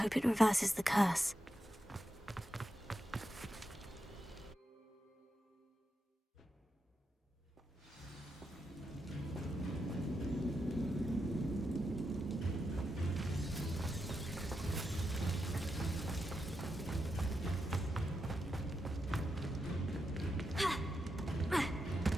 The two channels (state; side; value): normal; both; correlation 0.86